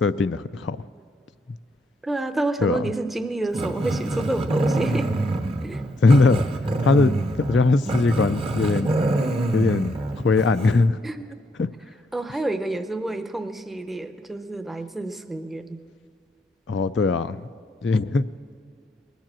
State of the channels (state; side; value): normal; both; correlation 0.76